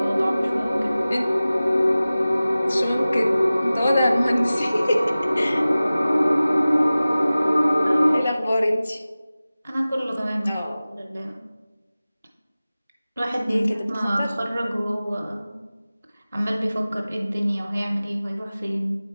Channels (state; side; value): inverted; both; correlation -0.97